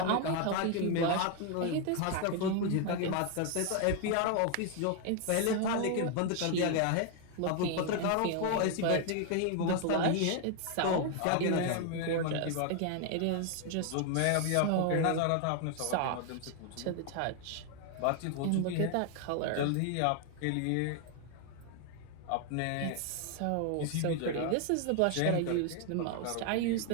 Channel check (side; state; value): both; different; correlation 0.00